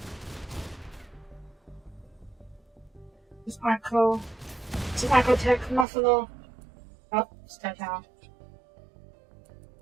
It's Arco. It's an Arcotech Muffalo. Oh, it's dead now.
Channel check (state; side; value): drops out; left; at 5.9 s